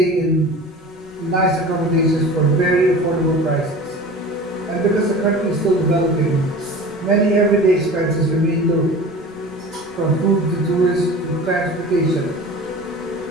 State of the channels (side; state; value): both; normal; correlation 0.38